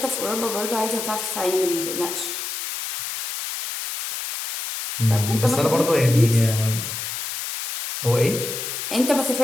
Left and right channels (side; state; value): left; noise; hiss, 6 dB below the sound